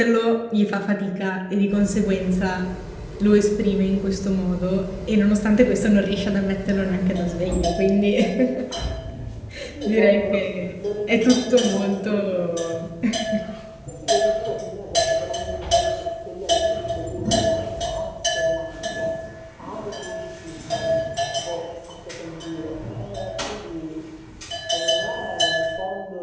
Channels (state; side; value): identical; both; correlation 1.00